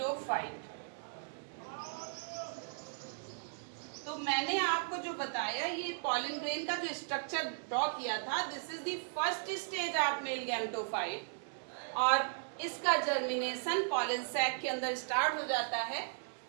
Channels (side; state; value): left; silent; digital silence